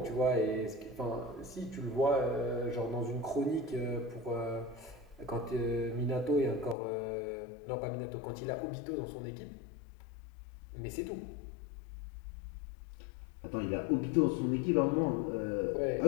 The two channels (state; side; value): drops out; right; at 6.8 s